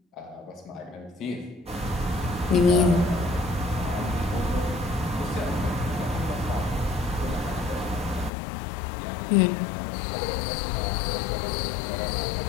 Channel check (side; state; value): right; drops out; at 8.3 s